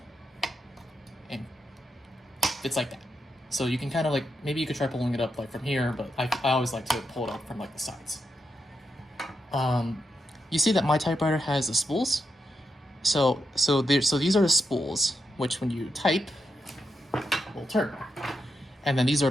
and it's like that. So you can kind of like, maybe you could try pulling it up like from here, but I always like to pull it up from like the sides. You see that my typewriter has the spools. So these are the spools, which when you type, will turn. And then these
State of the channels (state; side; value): normal; both; correlation 0.85